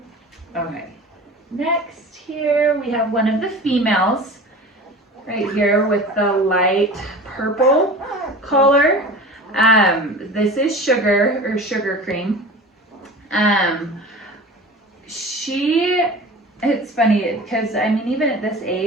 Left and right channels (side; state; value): both; normal; correlation 0.37